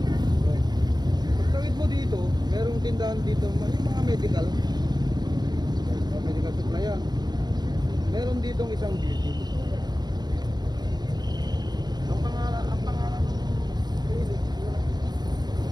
Pagtawid mo dito, merong tindahan dito, yung mga medical. Medical supply yan. Meron ditong isang beauty. Ang pangalan ng clinic,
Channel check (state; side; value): late; left; 0.20 ms